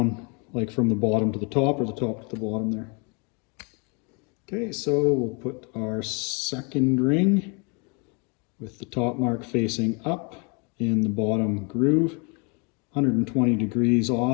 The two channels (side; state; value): right; quieter; 33.2 dB